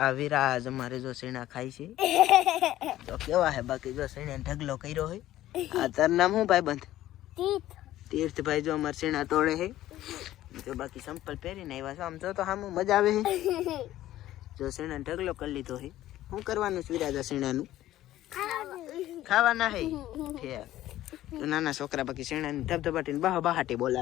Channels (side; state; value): right; quieter; 14.2 dB